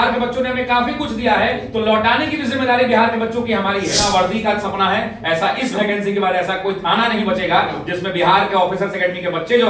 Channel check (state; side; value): identical; both; correlation 1.00